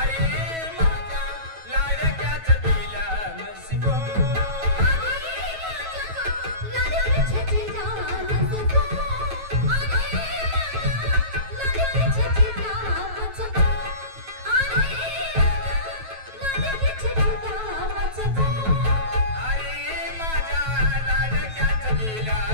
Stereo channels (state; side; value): late; left; 9.2 ms